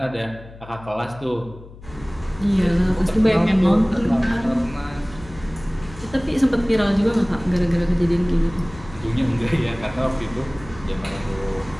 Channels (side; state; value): left; noise; hum, 18 dB below the sound